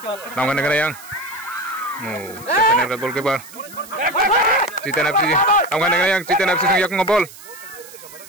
Tamkan kena yang. Oh, Citan FC goalkeeper. Citan FC. Tamkan kena yang Citan FC yang ngobol.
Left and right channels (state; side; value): noise; right; hiss, 18 dB below the sound